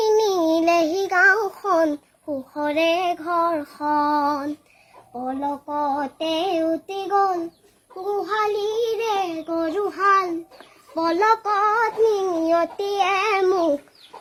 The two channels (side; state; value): both; identical; correlation 1.00